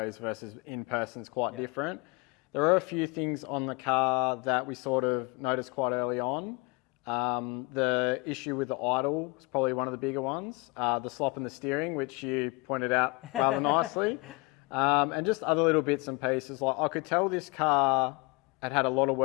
versus in person is quite different. There are a few things on the car that we sort of noticed quite early on. The issue with the idle is probably one of the bigger ones. The slop in the steering, which you pointed out rather nicely. And just other little bits and pieces. Like I could tell this car had a lot of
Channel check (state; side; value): quieter; right; 26.8 dB